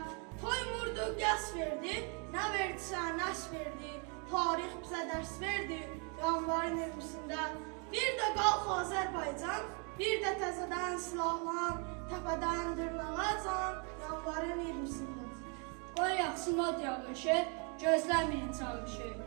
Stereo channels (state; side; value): quieter; left; 36.0 dB